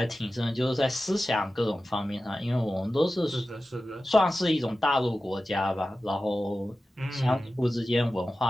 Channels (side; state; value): both; normal; correlation 0.94